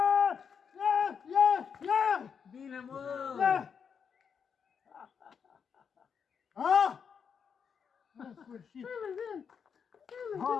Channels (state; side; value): quieter; right; 6.7 dB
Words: Yeah! Bine, mă! Yeah! Ah! În sfârșit!